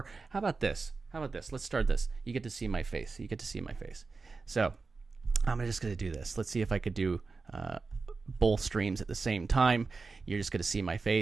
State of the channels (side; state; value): left; quieter; 4.2 dB